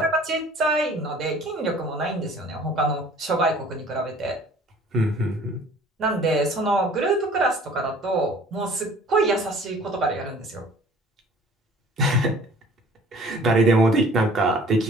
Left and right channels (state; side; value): normal; both; correlation 0.51